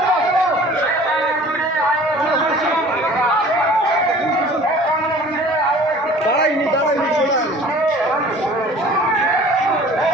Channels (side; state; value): both; normal; correlation 0.47